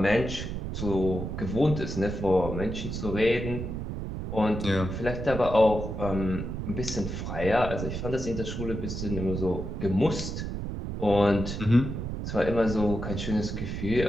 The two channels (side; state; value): right; noise; rumble, 5 dB below the sound